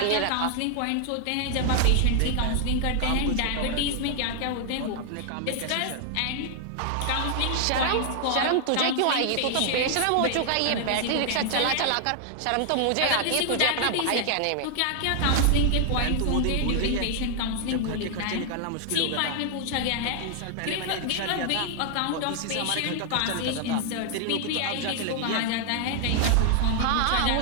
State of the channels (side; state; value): both; different; correlation 0.00